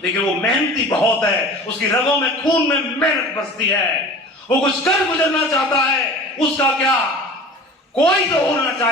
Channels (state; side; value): normal; both; correlation 0.40